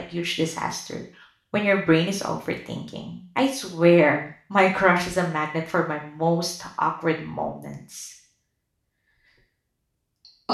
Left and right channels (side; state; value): both; identical; correlation 1.00